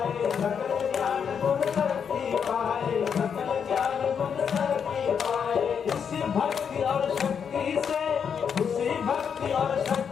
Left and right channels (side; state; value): right; quieter; 7.1 dB